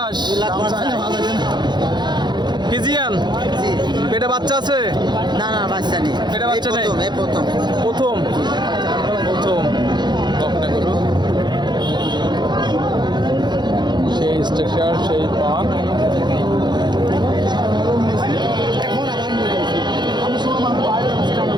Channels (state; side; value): late; left; 0.21 ms